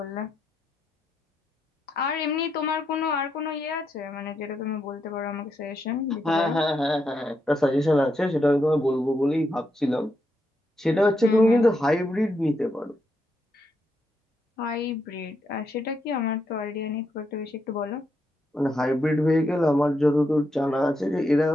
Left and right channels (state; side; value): normal; both; correlation 0.81